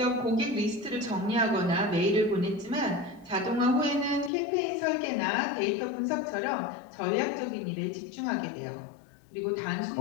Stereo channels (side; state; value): right; drops out; at 4.3 s